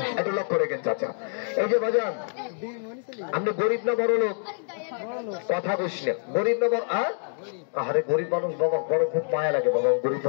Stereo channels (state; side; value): silent; right; 61 dB below the other